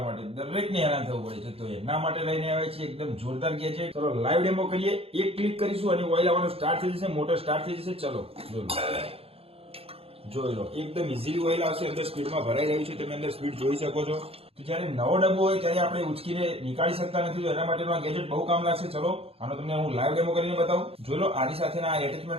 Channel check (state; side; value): late; left; 0.28 ms